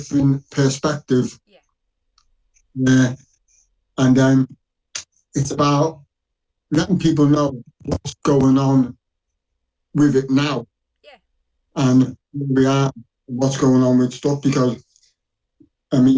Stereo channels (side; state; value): both; identical; correlation 1.00